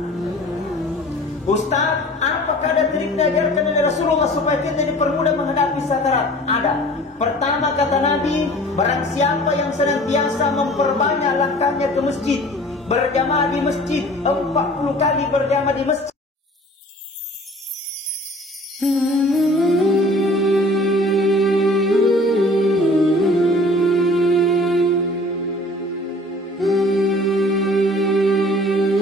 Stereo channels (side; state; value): both; normal; correlation 0.47